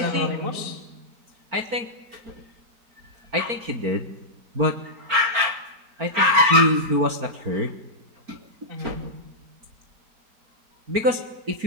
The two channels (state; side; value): late; left; 4.4 ms